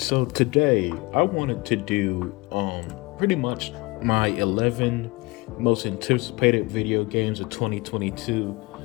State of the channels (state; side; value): quieter; right; 24.1 dB